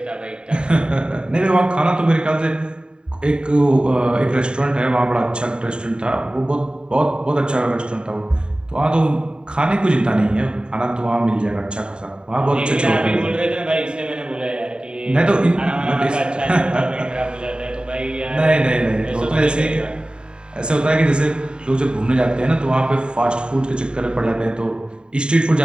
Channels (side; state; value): left; late; 0.050 ms